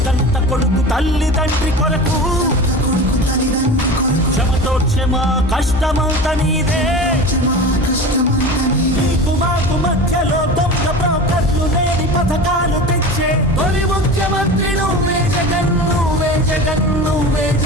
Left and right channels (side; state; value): both; normal; correlation 0.32